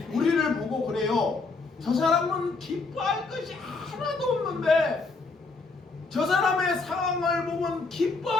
우리를 보고 그래요. 저 사람은 기뻐할 것이 하나도 없는데, 저 사람의 상황을 보면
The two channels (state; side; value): quieter; right; 3.9 dB